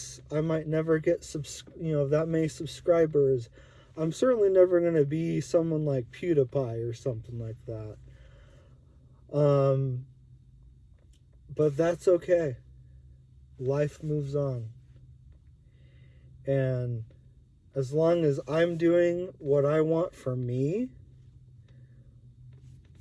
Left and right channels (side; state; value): both; identical; correlation 1.00